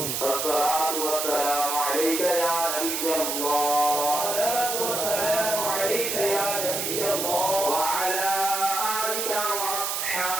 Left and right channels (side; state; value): right; noise; hiss, 1 dB below the sound